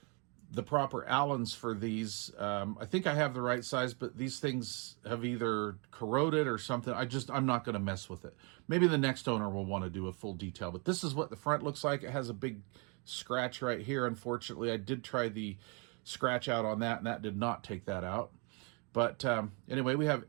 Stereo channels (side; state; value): left; quieter; 33.4 dB